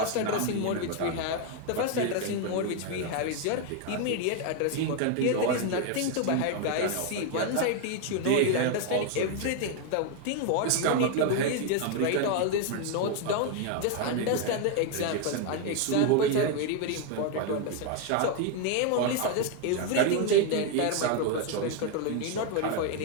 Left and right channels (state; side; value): different; both; correlation 0.01